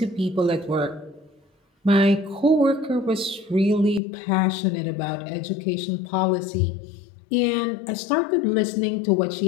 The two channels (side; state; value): right; drops out; at 4.0 s